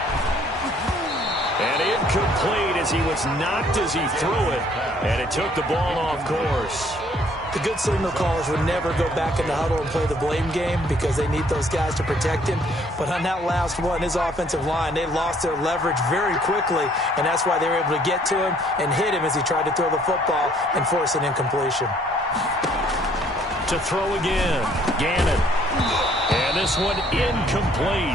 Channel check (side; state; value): both; normal; correlation 0.62